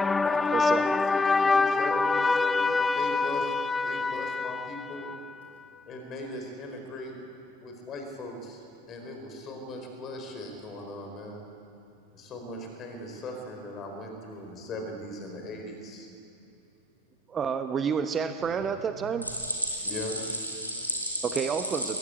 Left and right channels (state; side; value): normal; both; correlation 0.69